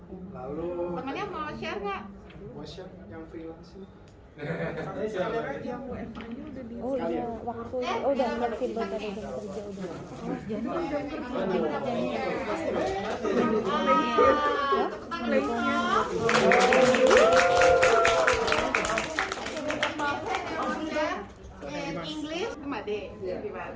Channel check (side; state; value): both; identical; correlation 1.00